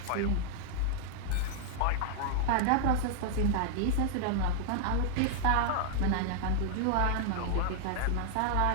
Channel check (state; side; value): different; both; correlation -0.01